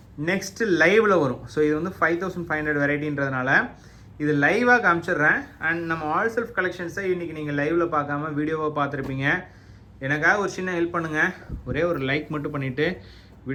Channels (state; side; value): identical; both; correlation 1.00